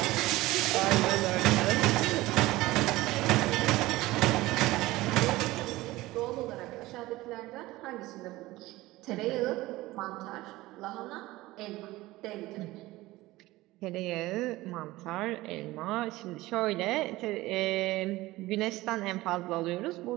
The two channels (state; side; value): quieter; left; 18.5 dB